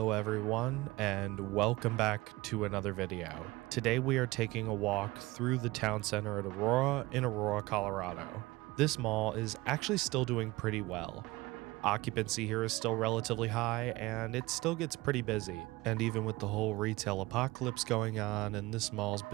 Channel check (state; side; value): quieter; left; 20.6 dB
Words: everyone, and welcome back to another video. Today we are taking a walk through the town center at Aurora in Aurora, Colorado. This mall is actually still doing pretty well. Occupancy here is still relatively high, and it still gets pretty busy. And even with the whole retail apocalypse going on and this mall's